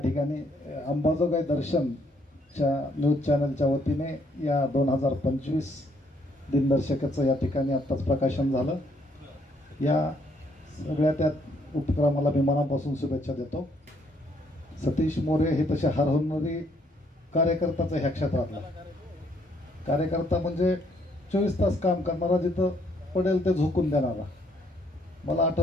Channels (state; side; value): normal; both; correlation 0.69